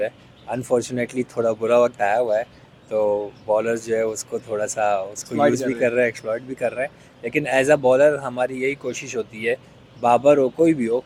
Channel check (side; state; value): both; identical; correlation 1.00